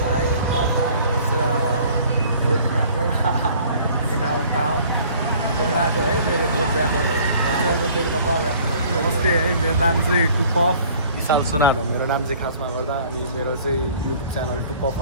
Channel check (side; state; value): both; inverted; correlation -0.53